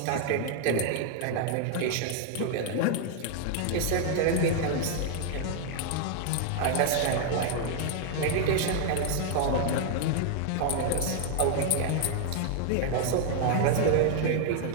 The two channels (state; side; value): different; both; correlation 0.00